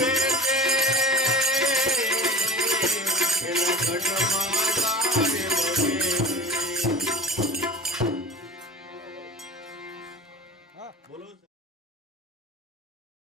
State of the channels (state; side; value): normal; both; correlation 0.37